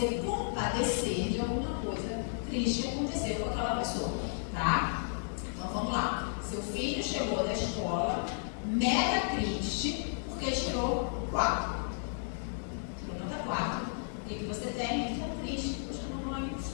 compadecer de alguma coisa triste que aconteceu com aquela pessoa. Tá? Então, vamos lá. Seu filho chegou da escola mega triste porque tirou 4. Tirou nota 4. O que você tem? Fica triste. Poxa, mamãe,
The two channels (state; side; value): silent; right; 56 dB below the other